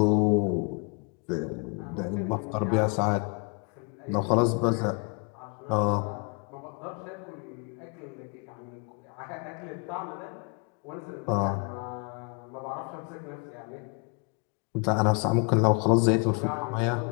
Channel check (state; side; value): quieter; right; 33.6 dB